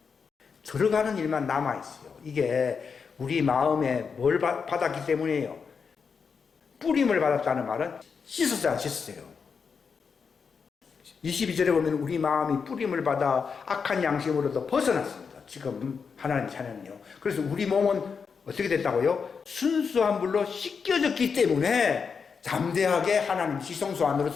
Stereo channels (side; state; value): right; quieter; 5.8 dB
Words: 들어가는 일만 남아있어요. 이게 우리 마음에 뭘 받았기 때문이에요. 뿌림을 받았다는 말은 씻었어요, 안 씻었어요? 22절에 보면 우리 마음이 뿌림을 받아 악한 양심으로도 벗어났습니다. 지금 하나님 자녀는요. 그래서 우리 몸은 어떻게 됐다고요? 순수한 물로 씻겨졌기 때문에 담대하게 하나님 지성소 안으로